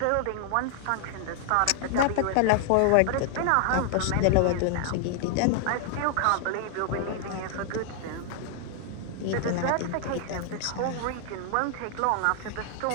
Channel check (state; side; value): different; both; correlation 0.00